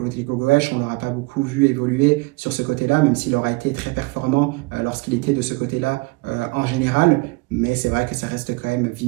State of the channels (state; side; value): quieter; left; 25.8 dB